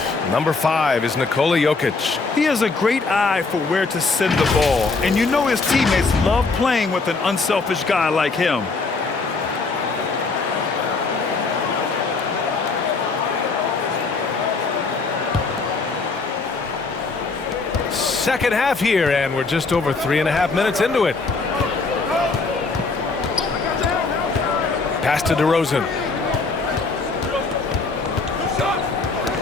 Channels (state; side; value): quieter; right; 4.1 dB